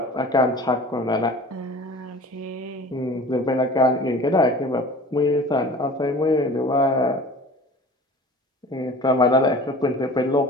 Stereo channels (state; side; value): normal; both; correlation 0.42